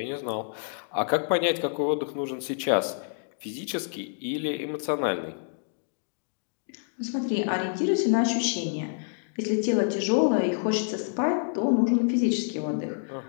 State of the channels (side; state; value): right; silent; digital silence